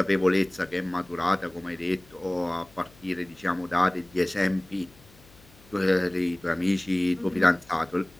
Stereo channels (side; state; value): left; noise; hum, 26 dB below the sound